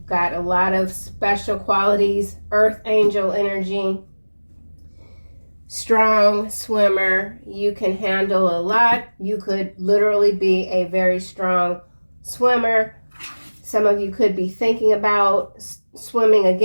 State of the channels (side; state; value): both; inverted; correlation -1.00